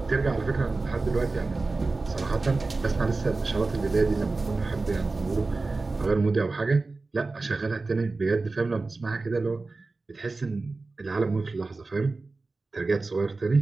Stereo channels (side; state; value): left; quieter; 3.6 dB